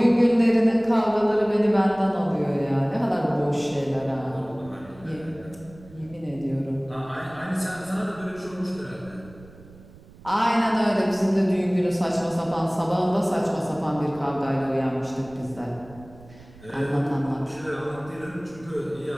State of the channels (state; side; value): noise; right; rumble, 22 dB below the sound